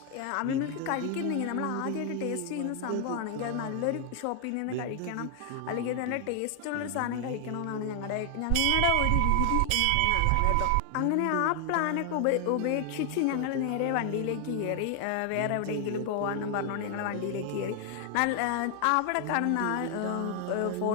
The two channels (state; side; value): different; both; correlation 0.00